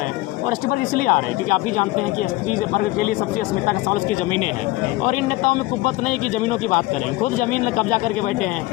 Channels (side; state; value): right; quieter; 19.2 dB